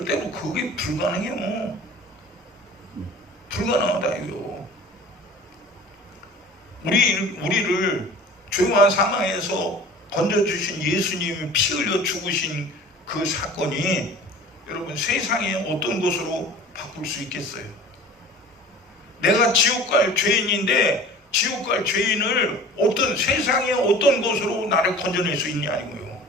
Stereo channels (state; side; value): normal; both; correlation 0.43